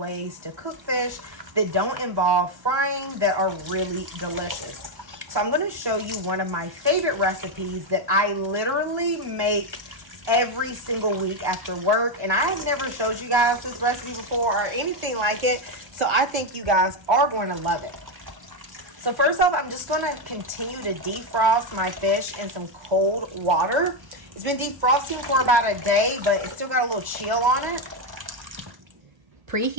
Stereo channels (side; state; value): left; late; 1.1 ms